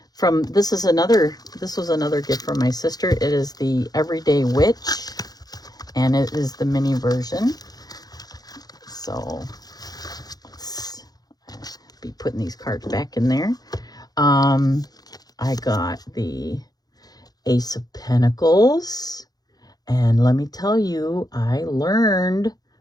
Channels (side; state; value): right; late; 0.19 ms